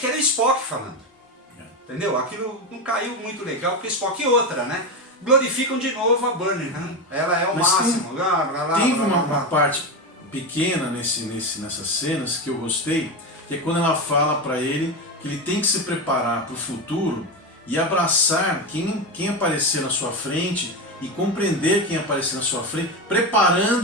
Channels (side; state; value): both; normal; correlation 0.16